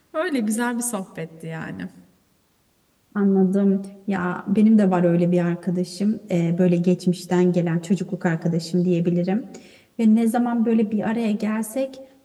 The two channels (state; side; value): identical; both; correlation 1.00